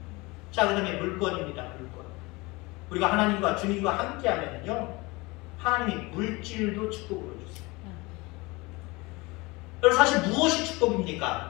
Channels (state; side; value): quieter; right; 24.0 dB